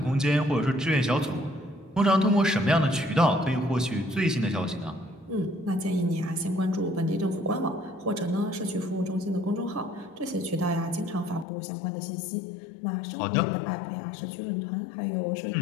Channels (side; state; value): right; drops out; at 11.5 s